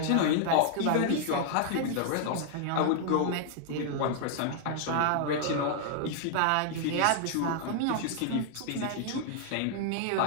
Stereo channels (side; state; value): both; different; correlation 0.00